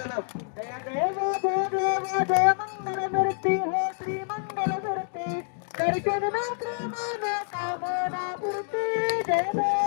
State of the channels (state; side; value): silent; right; digital silence